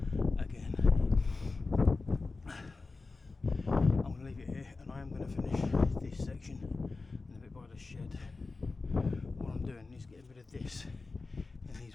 again. I'm going to leave it here, and I am going to finish this section and a bit by the shed. What I'm doing is getting rid of this in these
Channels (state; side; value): quieter; right; 3.9 dB